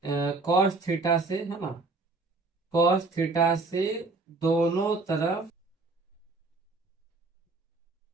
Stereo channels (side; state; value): left; quieter; 3.5 dB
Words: cos थीटा से, है ना, cos थीटा से दोनों तरफ